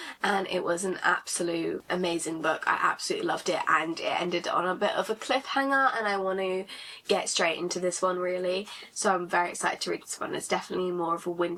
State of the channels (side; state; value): both; identical; correlation 1.00